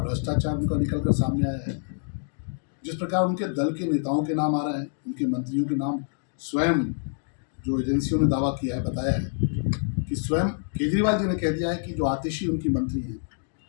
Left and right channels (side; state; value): right; silent; digital silence